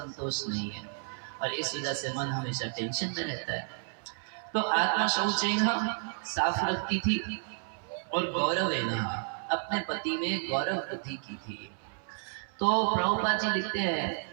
नहीं है और इस वजह से मन हमेशा टेंशन में रहता है। तो आत्मा शौचेन साफ रखती थी और गौरवेन अपने पति में गौरव वृद्धि की थी। तो प्रभुपाद जी लिखते हैं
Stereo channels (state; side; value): silent; left; 57 dB below the other